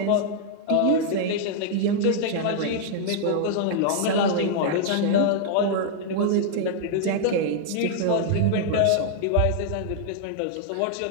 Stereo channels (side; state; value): both; different; correlation -0.01